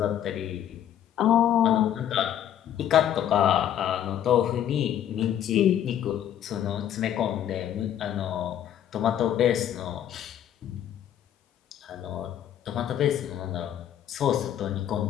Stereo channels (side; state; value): right; quieter; 10.5 dB